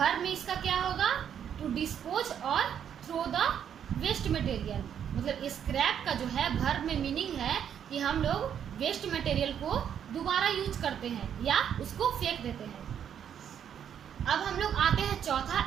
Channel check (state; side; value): quieter; left; 8.8 dB